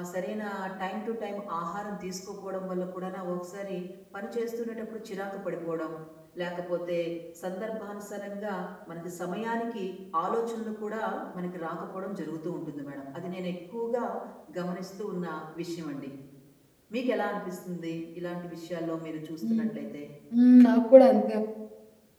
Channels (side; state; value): both; identical; correlation 1.00